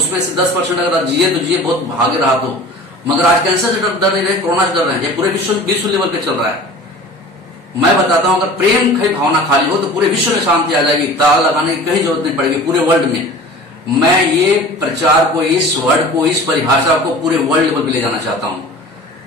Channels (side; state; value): both; normal; correlation 0.41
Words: से 10% अगर जिए तो जिए, बहुत भागे रहा तो। मगर आज कैंसर से डर नहीं रहे, कोरोना से डर रहे हैं। ये पूरे विश्व लेवल पे चल रहा है। मैं बताता हूं, अगर प्रेम की भावना खाली हो तो पूरे विश्व में शांति आ जाएगी। ताला लगाने की कहीं जरूरत नहीं पड़ेगी पूरे वर्ल्ड में। मैं ये प्रचार को, इस वर्ड को, इस परिभाषा को पूरे वर्ल्ड लेवल पे ले जाना चाहता हूं।